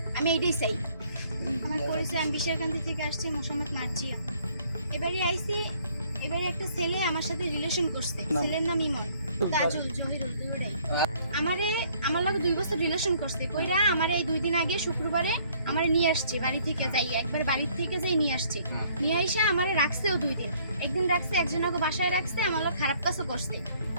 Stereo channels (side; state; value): both; inverted; correlation -0.62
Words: আমি এইটাই চাই আমার পরিচয় আমি বিশারকান্দি থেকে আসছি মোহাম্মদ মার্জিয়া এবারে আইছি এবারে একটা ছেলে আমার সাথে রিলেশন করছে ছেলের নাম ইমন তাজুল জহিরুল দুইটাই আমারে আমার লগে 2 বছর রিলেশন করছে কইরা আমারে এই 2 দিন আগে শুক্রবারে আমারে নিয়ে আসছে বাড়ি থেকে যাই একবার বাড়ি থেকে যাই নিয়ে আসছে নিয়ে আইসা আমারে রাখছেও 2 দিন একদিন রাখছে একজনকে বাসায় রাখছে আমার লগে খারাপ কাজও করছে